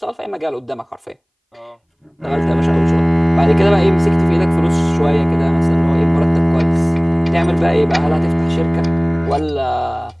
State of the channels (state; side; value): identical; both; correlation 1.00